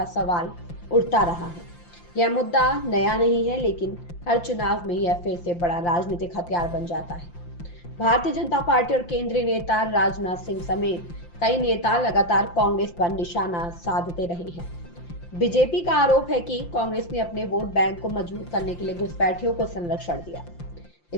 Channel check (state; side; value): late; right; 5.8 ms